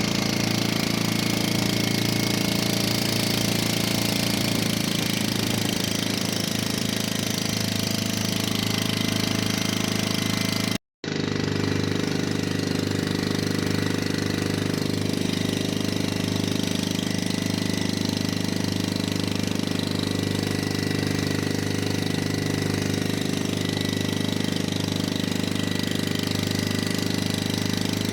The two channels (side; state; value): both; identical; correlation 1.00